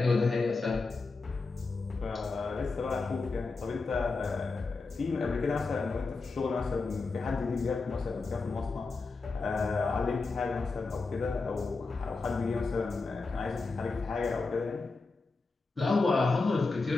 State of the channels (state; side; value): quieter; right; 4.0 dB